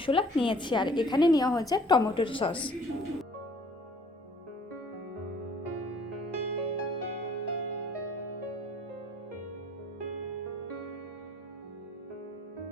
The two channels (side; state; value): both; normal; correlation 0.56